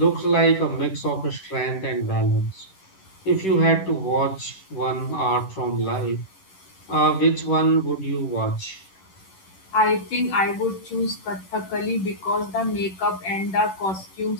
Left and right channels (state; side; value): late; right; 11 ms